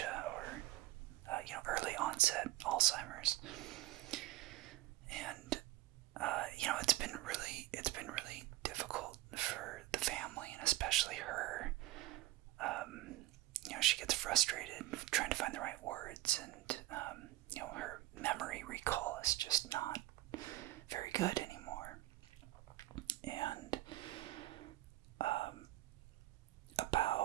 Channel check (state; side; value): quieter; left; 17.1 dB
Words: or early onset Alzheimer's. And it's been really difficult for the family, and especially her. She gets frustrated trying to find the right words, and her memory recall is just not very good anymore. And